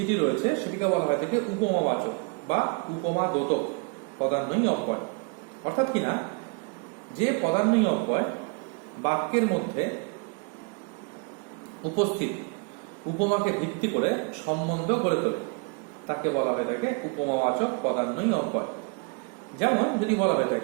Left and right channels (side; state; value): left; quieter; 32.9 dB